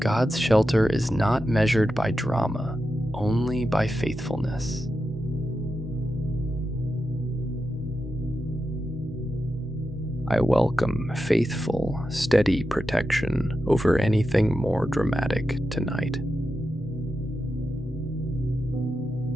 God's shelter is not measured by drama, only by faithfulness. I welcome faithful, steady protection over anything more dramatic tonight.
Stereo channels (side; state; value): both; normal; correlation 0.89